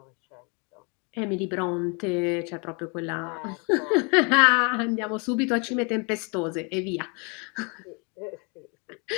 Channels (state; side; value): quieter; right; 33.1 dB